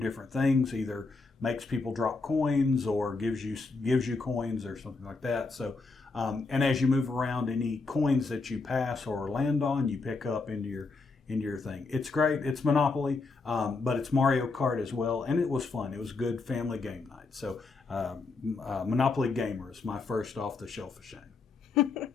things, either makes people drop coins or gives you coins or something like that. So, and as you move around, any coins that you pass or land on, you pick up into your thing. It's great. It's Monopoly, but it's Mario Kart as well, and it was fun. It was good family game night. So, Monopoly Gamer is my first off the shelf of shame.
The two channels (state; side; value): quieter; right; 4.0 dB